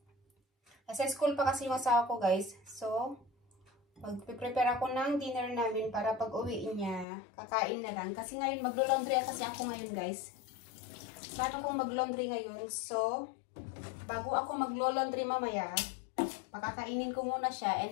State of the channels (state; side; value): drops out; right; at 7.1 s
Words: school pa kasi yung asawa ko guys. So, magpre-prepare ako ng dinner namin para pag uwi niya, kakain na lang. Kasi ngayon maglo-laundry kasi ako ngayon guys. Paano kung mag-laundry ngayon? So, bago ako maglo-laundry mamaya, pakakainin ko muna siya